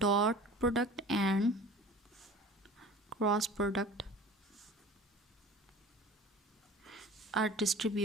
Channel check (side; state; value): both; normal; correlation 0.42